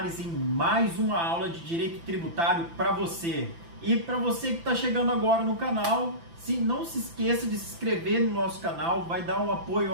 em mais uma aula de Direito Tributário para você. E para você que está chegando agora no canal, não se esqueça de se inscrever no nosso canal, vai dar um apoio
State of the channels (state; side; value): late; left; 5.9 ms